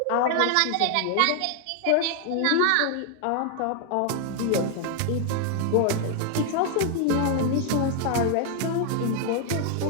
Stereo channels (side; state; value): both; different; correlation 0.00